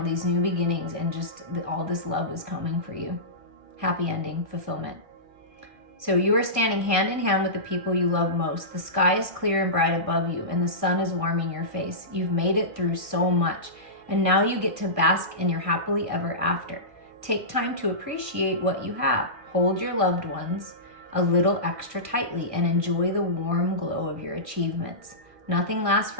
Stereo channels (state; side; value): late; left; 1.6 ms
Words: these new beginnings and just all this love is coming for you. Happy ending, fulfillment. So you are standing hand in hand with the people you love most. The sky is clear and bright above you, and the sun is warming your face. You've made it through so much, and now you get to bask in your happily ever after. Take time to appreciate what you have. Hold your loved ones a little extra tightly and enjoy the warm glow of your achievements. Nothing lasts